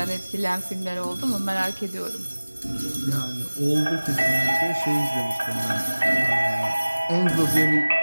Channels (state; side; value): inverted; both; correlation -1.00